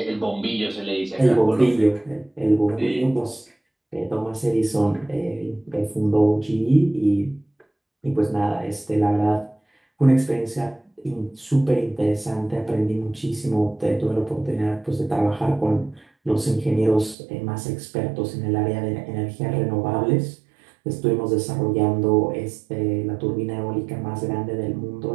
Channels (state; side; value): drops out; left; at 17.2 s